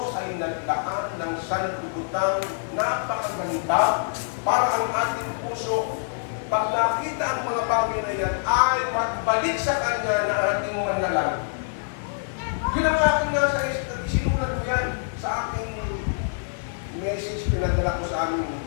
ay nagdaan ng sanlibutan, napakaganda para ang ating puso, pag nakita ang mga bagay na yan, ay magbalik sa Kanya na ating manalag. Yun ang aking nasa isinulat ko yan sa aking message pinadala ko sa aming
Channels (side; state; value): right; silent; digital silence